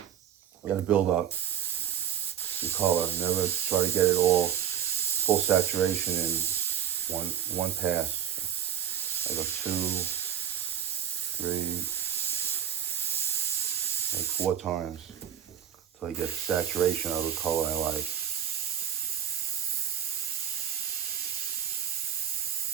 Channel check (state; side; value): quieter; left; 9.6 dB